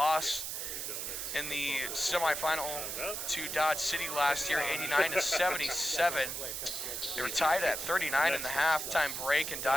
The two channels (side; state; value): right; noise; hiss, 4 dB below the sound